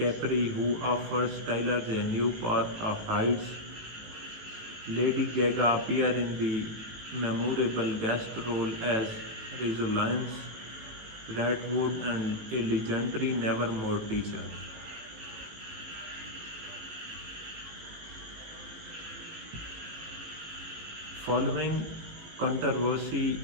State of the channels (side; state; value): left; late; 18 ms